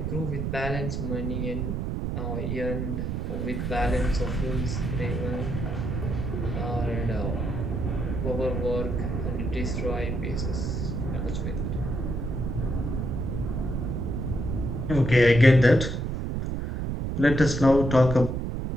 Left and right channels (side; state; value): right; noise; rumble, 2 dB below the sound